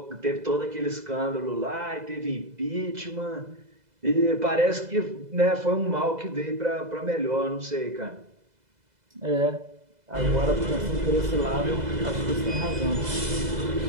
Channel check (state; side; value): late; left; 2.0 ms